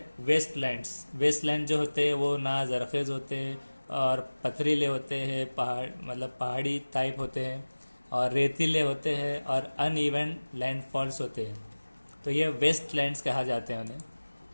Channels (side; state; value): both; inverted; correlation -1.00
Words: वेस्टलैंड्स. वेस्टलैंड जो होते हैं वो ना जरखेज़ होते हैं और पथरीले होते हैं, पहाड़ मतलब पहाड़ी टाइप होते हैं, और रेतीले होते हैं और अनइवन लैंडफॉल्स होते हैं. तो ये वेस्टलैंड्स कहा जाते हैं उन्हें.